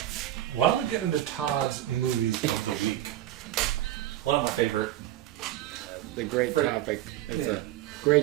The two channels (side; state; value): left; quieter; 13.6 dB